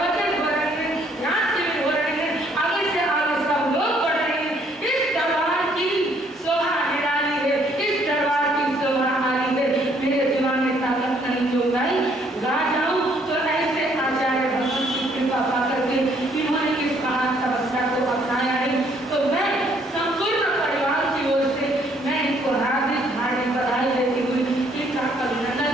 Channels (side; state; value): both; normal; correlation 0.65